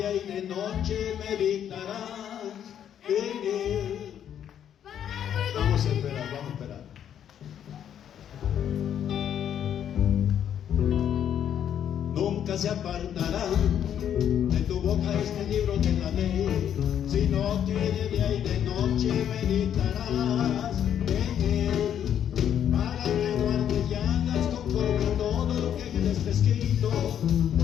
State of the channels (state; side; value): quieter; right; 9.6 dB